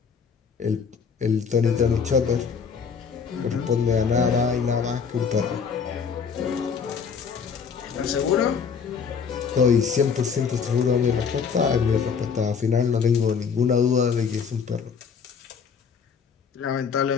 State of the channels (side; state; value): right; quieter; 6.2 dB